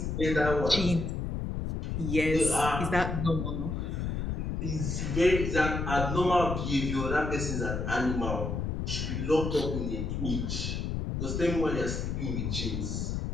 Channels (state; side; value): noise; left; rumble, 2 dB below the sound